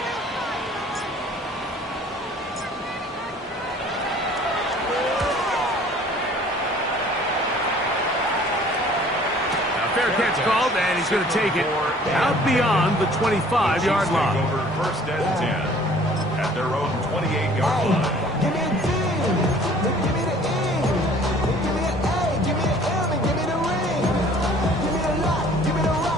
Fair catch called, and he's going to take it out beyond the 25-yard line. Over 1st and 10 at their own 28-yard line. Give me a D. Give me the E. Give me an A. Give me an M. And give me the ring. Give me the lock. Give me the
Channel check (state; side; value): normal; both; correlation 0.53